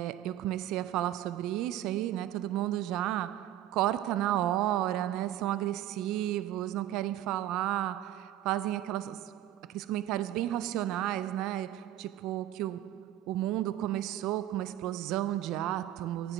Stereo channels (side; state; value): left; quieter; 12.8 dB